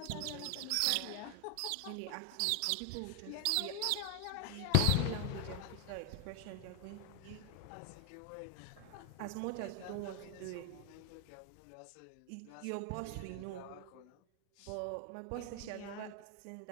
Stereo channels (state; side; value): different; both; correlation 0.00